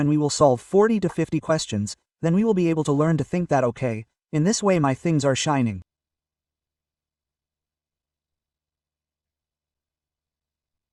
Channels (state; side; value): identical; both; correlation 1.00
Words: we will solve 40 to 50 questions, then we will be able to learn to think that okay, in this way my things are shining.